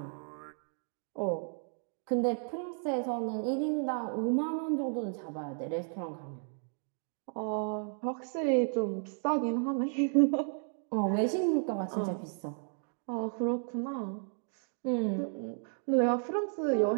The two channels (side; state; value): left; silent; 55 dB below the other